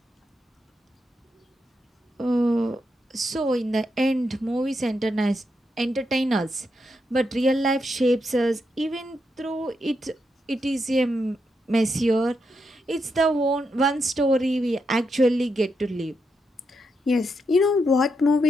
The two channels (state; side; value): normal; both; correlation 0.83